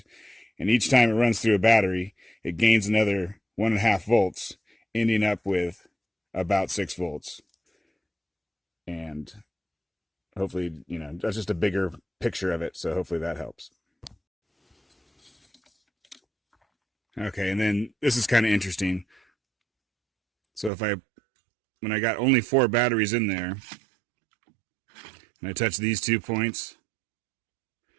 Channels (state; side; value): drops out; left; at 20.7 s